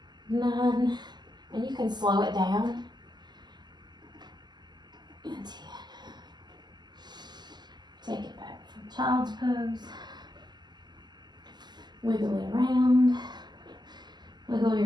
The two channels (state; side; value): late; left; 0.21 ms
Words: 9, and you can slow it down, and 10. Take it back from child's pose. Wiggle it around. Wiggle